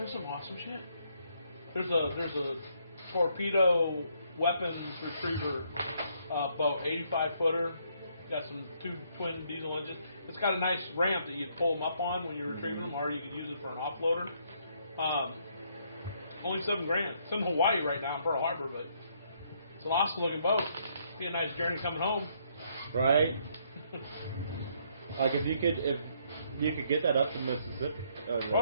some awesome shit. There's a torpedo weapons retriever boat, 85 footer. Got some 2 twin diesel engines. It's got a nice ramp that you pull them up on when you're retrieving them, or you could use it for an offloader. Only $7,000. It's in Hawaii right now in Pearl Harbor, but it's an awesome looking boat. Be a nice journey coming home. Right. Like if you could get that up to Mississippi, Oh,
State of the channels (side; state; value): both; inverted; correlation -0.70